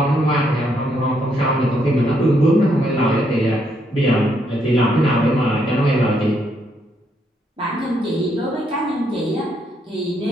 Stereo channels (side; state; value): both; normal; correlation 0.74